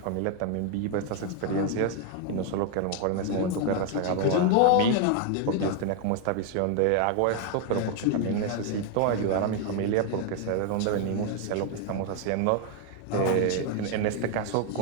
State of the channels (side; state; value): both; different; correlation 0.01